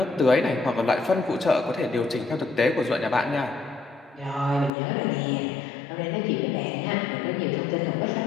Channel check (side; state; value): right; drops out; at 4.7 s